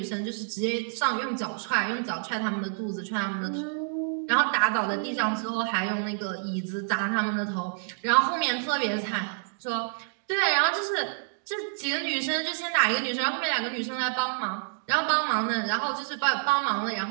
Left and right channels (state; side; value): silent; left; digital silence